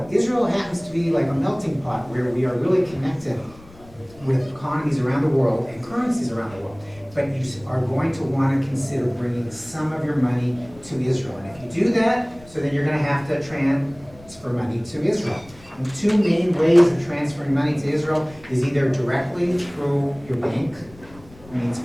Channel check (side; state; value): left; noise; rumble, 23 dB below the sound